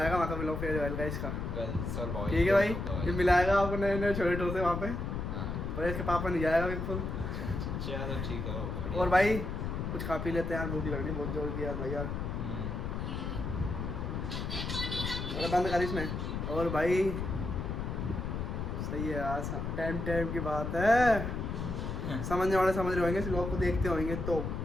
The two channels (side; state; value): left; noise; rumble, 3 dB below the sound